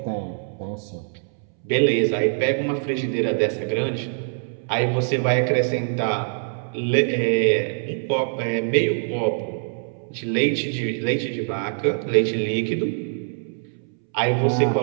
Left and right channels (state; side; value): silent; left; 63 dB below the other